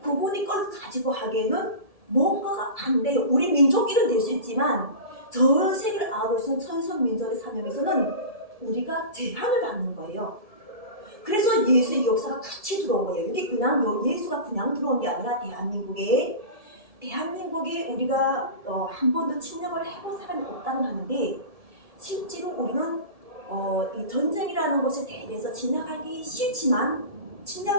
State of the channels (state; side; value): late; left; 1.7 ms